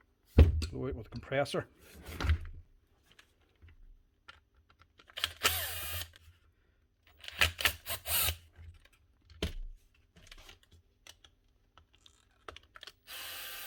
Blow it with the compressor.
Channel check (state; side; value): identical; both; correlation 1.00